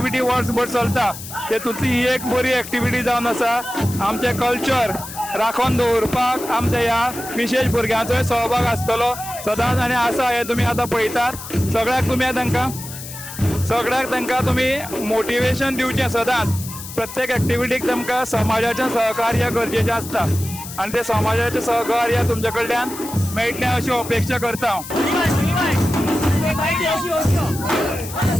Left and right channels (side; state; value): left; noise; hiss, 12 dB below the sound